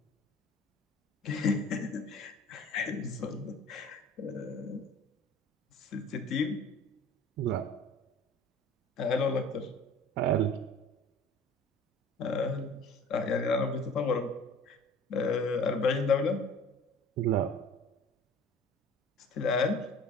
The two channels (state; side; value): normal; both; correlation 0.45